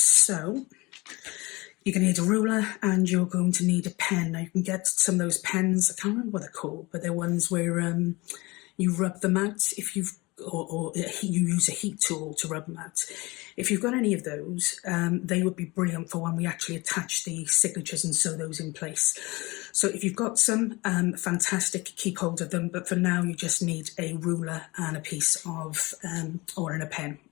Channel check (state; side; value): quieter; right; 23.2 dB